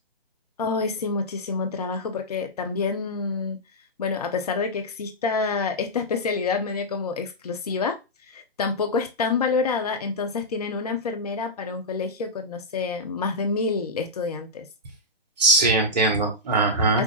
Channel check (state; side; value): normal; both; correlation -0.09